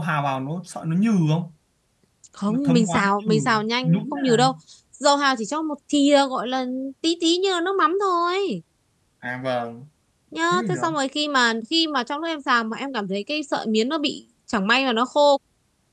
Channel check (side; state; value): both; identical; correlation 1.00